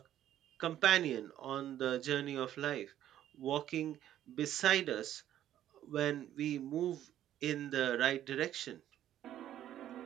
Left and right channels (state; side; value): quieter; left; 11.8 dB